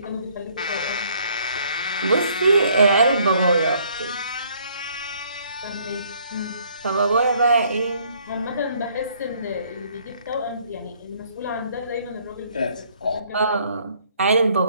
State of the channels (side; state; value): both; inverted; correlation -0.63